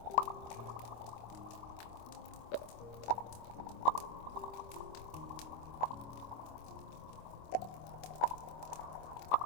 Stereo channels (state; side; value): late; right; 25 ms